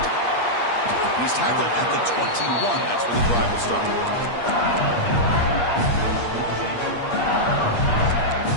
He's tackled at the 21. That's where the drive will start.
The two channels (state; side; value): late; right; 8.5 ms